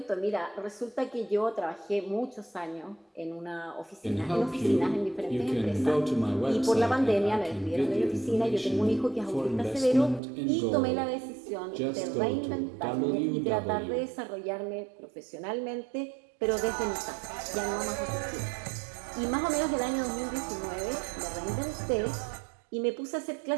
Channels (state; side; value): drops out; left; at 10.2 s